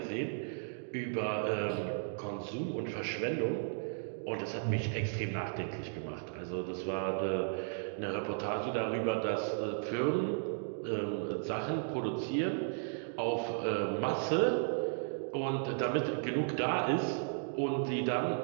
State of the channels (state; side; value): silent; left; digital silence